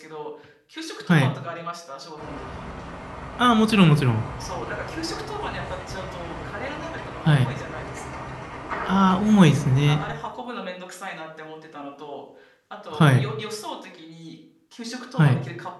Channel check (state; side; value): identical; both; correlation 1.00